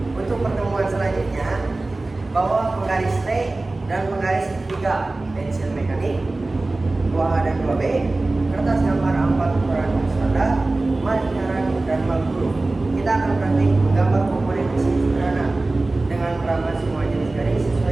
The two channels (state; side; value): quieter; left; 3.1 dB